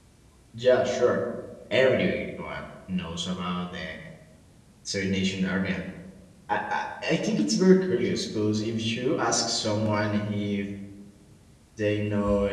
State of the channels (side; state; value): both; identical; correlation 1.00